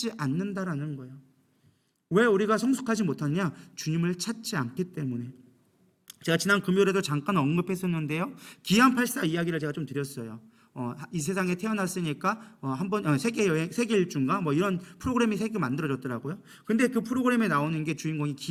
않는다라는 거예요. 왜 우리가 성숙하지 못하냐? 주님을 찾지 않기 때문에. 제가 지난 금요일에도 잠깐 언급했었는데요, 기안84 이야기를 제가 좀 드렸어요. 이 세상에 태어났으니까 한번 세계 일주인가 뭐 이런 프로그램이 새롭게 만들어졌더라고요. 근데 그 프로그램에 나오는 게 주인공이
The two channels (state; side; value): identical; both; correlation 1.00